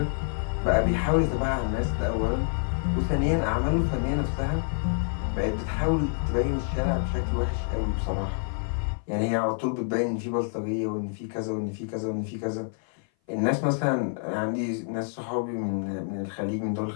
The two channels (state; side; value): silent; right; 57 dB below the other